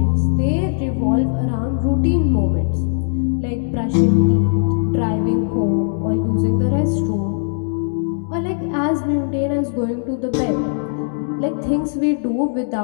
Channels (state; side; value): silent; right; digital silence